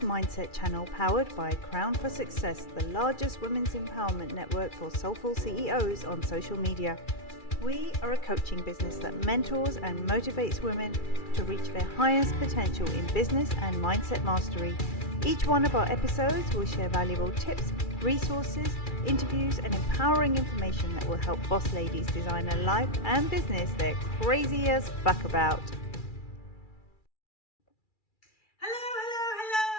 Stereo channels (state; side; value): late; right; 2.3 ms